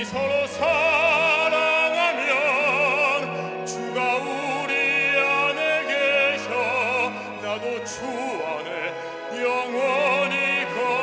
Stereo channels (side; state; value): both; identical; correlation 1.00